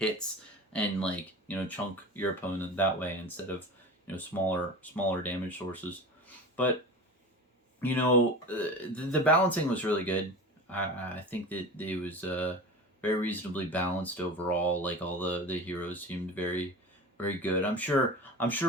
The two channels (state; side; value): normal; both; correlation 0.32